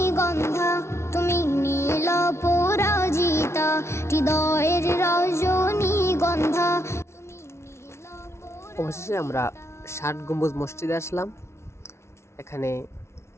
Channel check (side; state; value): right; late; 0.13 ms